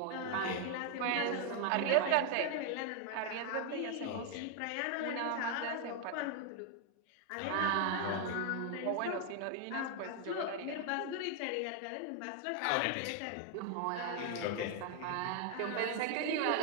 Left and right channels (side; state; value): both; different; correlation 0.00